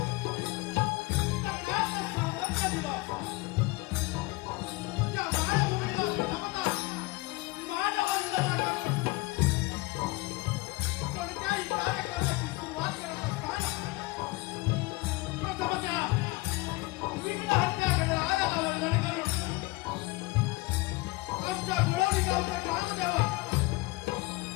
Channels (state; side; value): quieter; right; 22.5 dB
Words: तज्ञाचं सामर्थ्य दिलं. त्या मायभूमीला प्रथमतः मानववंदना करून कोणत्याही कार्यक्रमाची सुरुवात करत असताना प्रथमतः विघ्नहत्या गणरायाला वंदन करून आमच्या गोळवली गावचा ग्रामदेवा